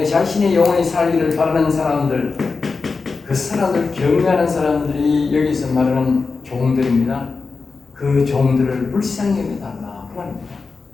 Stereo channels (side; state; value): right; quieter; 4.4 dB